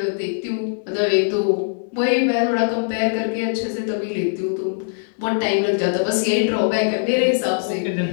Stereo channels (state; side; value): silent; right; digital silence